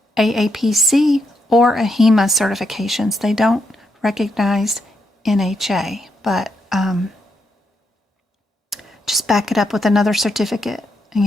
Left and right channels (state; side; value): normal; both; correlation 0.79